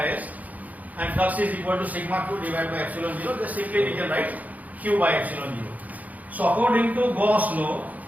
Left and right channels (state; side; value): late; left; 0.077 ms